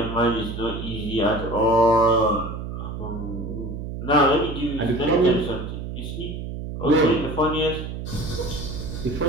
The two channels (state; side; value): noise; right; hum, 7 dB below the sound